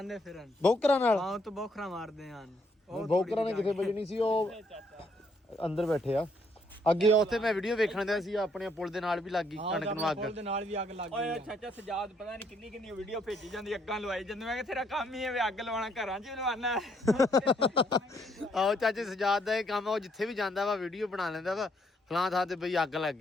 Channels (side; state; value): both; normal; correlation 0.70